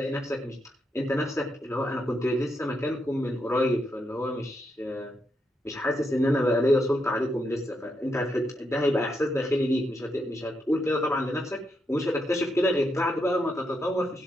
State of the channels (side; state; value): both; normal; correlation 0.81